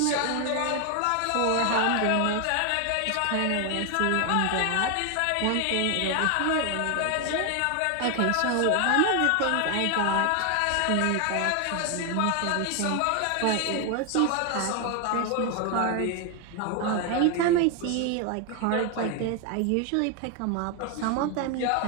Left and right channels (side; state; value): both; different; correlation 0.01